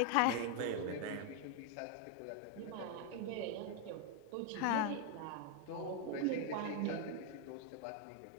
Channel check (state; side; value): different; both; correlation 0.01